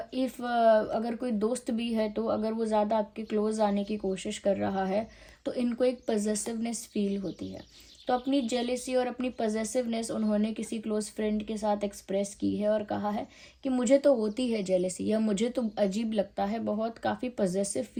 इफ़ अगर कोई दोस्त भी है तो अगर वो ज़्यादा आपके क्लोज आने की कोशिश कर रहा है तो इनको एक पॉजेसिवनेस फील होती है। तो अपनी जेलेसी और अपनी पॉजेसिवनेस उन्होंने किसी क्लोज फ्रेंड के साथ एक्सप्रेस की है और कहा है कि मुझे तो होती है जेलेसी, या मुझे तो अजीब लगता है, बहुत काफ़ी पॉजेसिव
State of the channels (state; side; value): identical; both; correlation 1.00